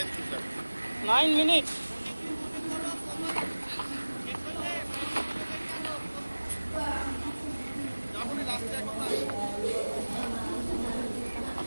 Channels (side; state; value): both; inverted; correlation -1.00